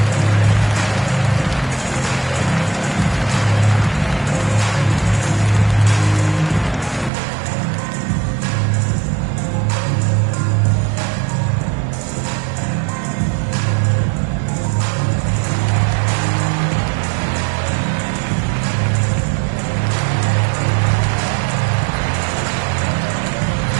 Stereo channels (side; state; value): left; drops out; at 7.1 s